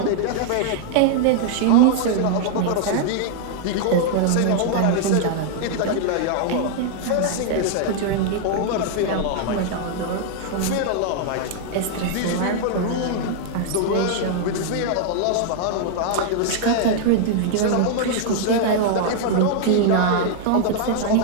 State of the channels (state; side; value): different; both; correlation -0.01